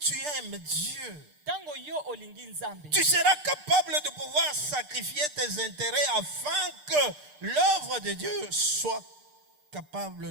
aimes Dieu, Tango yo olingi nzambe, tu seras capable de pouvoir sacrifier tes intérêts afin que l'œuvre de Dieu soit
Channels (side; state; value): left; late; 6.7 ms